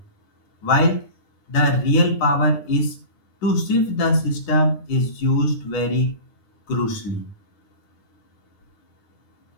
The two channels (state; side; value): late; right; 9.7 ms